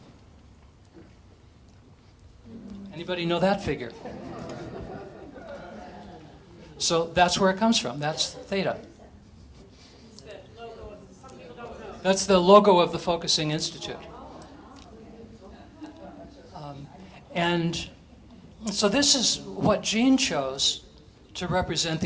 Anybody know that figure? So that's where it comes from. That's theta. That's the logo of the Focusing Institute. And so this is what Jean chose to represent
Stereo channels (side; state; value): both; identical; correlation 1.00